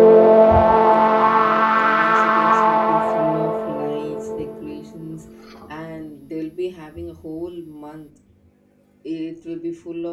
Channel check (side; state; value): both; identical; correlation 1.00